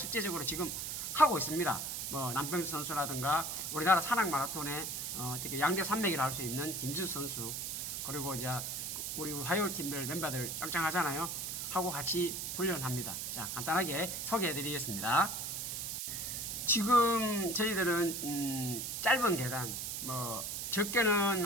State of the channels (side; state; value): right; noise; hiss, 4 dB below the sound